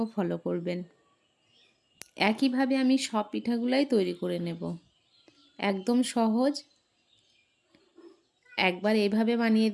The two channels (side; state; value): both; identical; correlation 1.00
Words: ও ফলো করবেন। একইভাবে আমি সব পিঠাগুলাই তৈরি করে নেব। একদম সহজ, একবার এইভাবে বানিয়ে